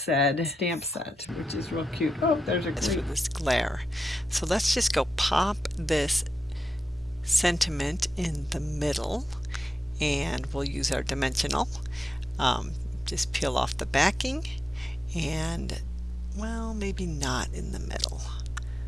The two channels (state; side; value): normal; both; correlation 0.89